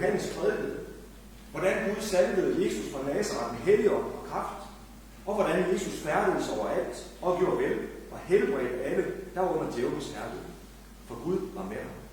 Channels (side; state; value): both; identical; correlation 1.00